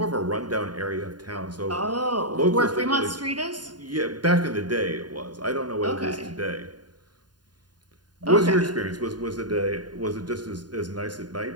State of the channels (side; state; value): left; late; 0.70 ms